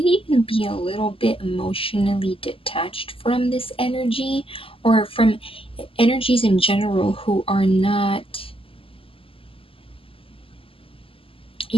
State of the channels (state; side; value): late; right; 0.26 ms